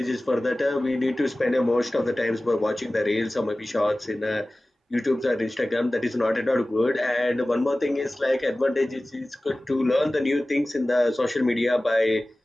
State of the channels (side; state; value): both; normal; correlation 0.97